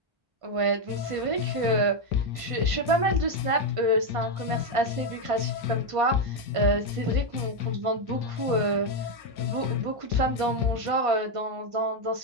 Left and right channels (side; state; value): left; late; 1.5 ms